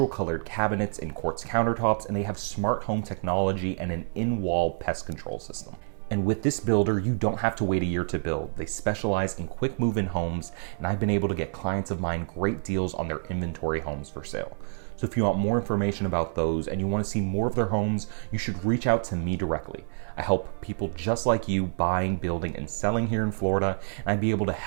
colored cabinets and quartz countertops, and they have smart home technology and an in-wall pest control system. And with this builder, you don't have to wait a year to build. They specialize in quick move-in homes, and I've been able to get clients of mine great deals on their inventory homes for sale. So if you want more information about those and you want to see more of their homes, you should reach out to me directly. I help people just like you buying, building, and selling here in Florida, and I'd be able to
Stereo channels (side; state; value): left; silent; digital silence